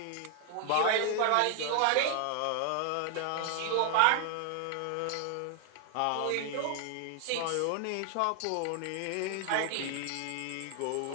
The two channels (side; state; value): both; different; correlation 0.00